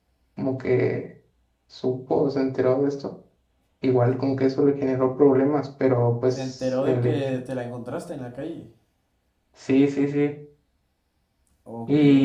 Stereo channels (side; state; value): both; identical; correlation 1.00